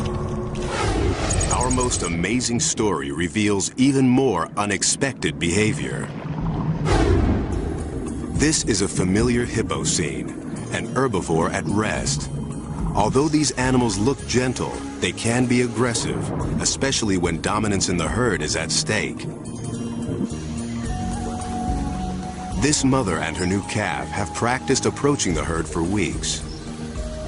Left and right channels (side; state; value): both; identical; correlation 1.00